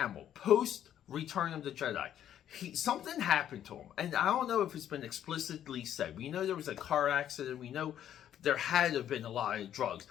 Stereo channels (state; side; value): quieter; right; 10.6 dB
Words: post Return of the Jedi, something happened to him. And I don't know if it's been explicitly said. We know there was a car accident. We know there had to have been a lot of drugs.